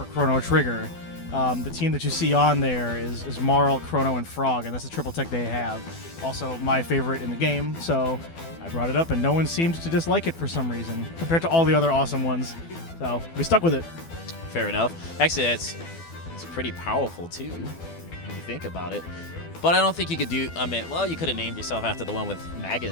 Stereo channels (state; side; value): late; right; 12 ms